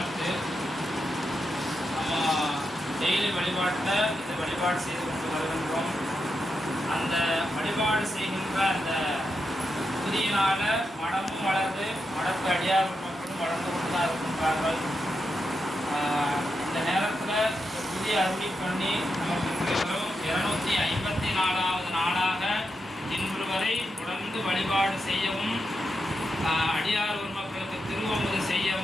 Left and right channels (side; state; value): both; normal; correlation 0.86